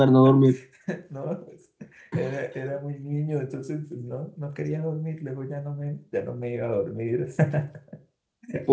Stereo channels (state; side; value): identical; both; correlation 1.00